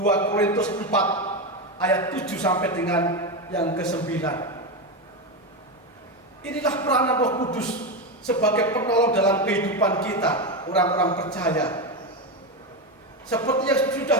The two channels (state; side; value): normal; both; correlation 0.14